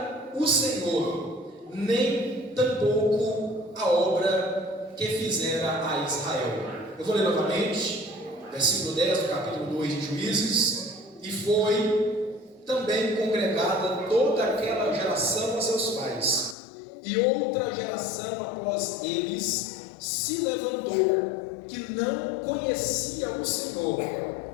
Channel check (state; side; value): drops out; right; at 16.6 s